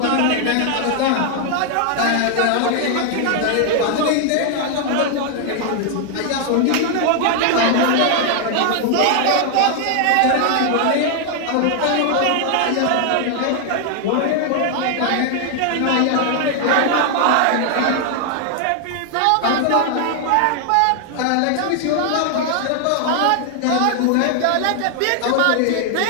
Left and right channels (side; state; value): both; different; correlation 0.00